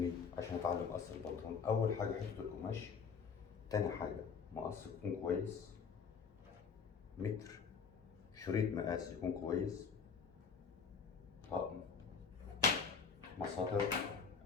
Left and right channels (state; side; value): quieter; right; 6.0 dB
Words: عشان اتعلم قص البنطلون اول حاجه حته القماش، تاني حاجه مقص يكون كويس، متر، شريط مقاس يكون كويس، طقم مساطر